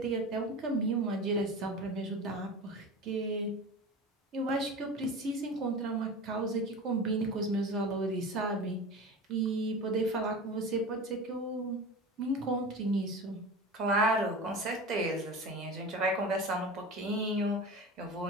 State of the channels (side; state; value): both; normal; correlation 0.31